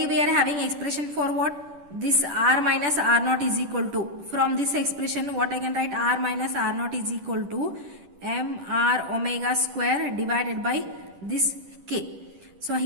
we are having expression for what? This r minus r naught is equal to, from this expression what I can write, r minus r naught is equal to mr omega square divided by this k. So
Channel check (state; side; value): late; left; 10 ms